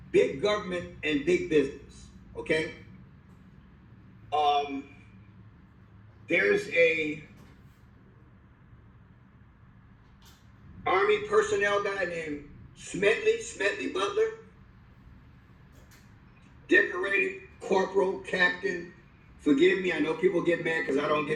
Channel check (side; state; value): both; identical; correlation 1.00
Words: big government and big business, okay? There's a Army personnel guy named Smedley Butler, decorated corporal, captain. Forgive me, I know people get mad because I don't